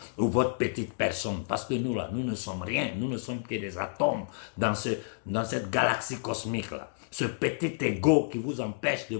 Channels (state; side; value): silent; right; digital silence